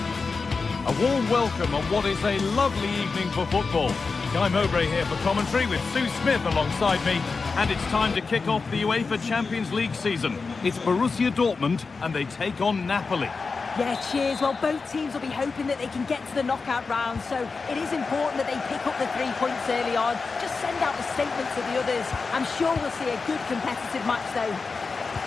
A warm welcome on what is a lovely evening for football. Guy Mowbray here for commentary with Sue Smith alongside me. And it's time to kick off the UEFA Champions League season. It's Borussia Dortmund and they take on Napoli. Yeah, cheers. Well, both teams will be hoping that they can get to the knockout round, so it is important that they pick up the 3 points early on. Just send out the statement to the others. I'm sure we'll see a good competitive match, though.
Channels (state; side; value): quieter; right; 4.5 dB